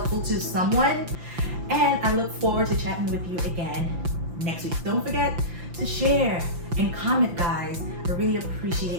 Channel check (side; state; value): left; late; 5.8 ms